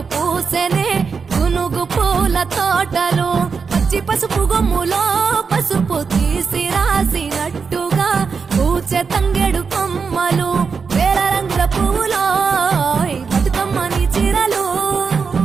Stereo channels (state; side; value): quieter; left; 5.5 dB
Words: పూసెనే గునుగు పూల తోటలు పచ్చి పసుపు గొమ్ములో పసుపు తీసి రాసినట్టుగా పూచె తంగెడు కొమ్మలు వేల రంగుల పువ్వులో బతుకమ్మని చీరలు